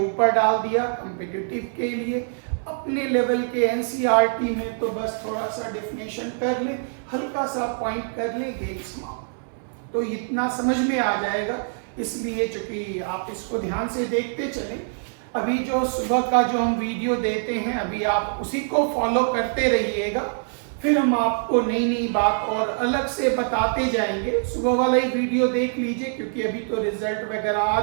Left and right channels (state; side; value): silent; left; digital silence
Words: डाल दिया कॉम्पिटिटिव के लिए। अपने लेवल के एनसीईआरटी में तो बस थोड़ा सा डेफिनेशन कर ले, हल्का सा पॉइंट कर ले, गेट्स मार्क, तो इतना समझ में आ जाएगा। इसलिए चूंकि आप इसको ध्यान से देखते चलें, अभी जो सुबह का जो हम वीडियो देते हैं अभी आप उसी को फॉलो करते रहिएगा, फिर हम आपको नई नई बात और अलग से बताते जाएंगे। सुबह वाला ही वीडियो देख लीजिए, क्योंकि अभी तो रिजल्ट वगैरह आ